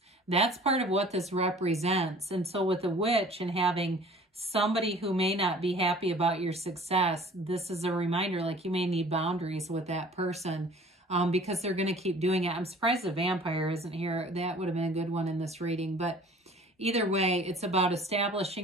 That's part of what this represents. And so with the witch and having somebody who may not be happy about your success, this is a reminder, like you may need boundaries with that person. Because they're going to keep doing it. I'm surprised the vampire isn't here. That would have been a good one in this reading. But either way, it's about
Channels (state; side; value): normal; both; correlation 0.48